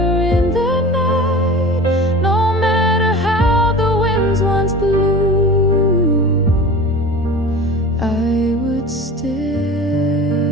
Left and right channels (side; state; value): both; normal; correlation 0.37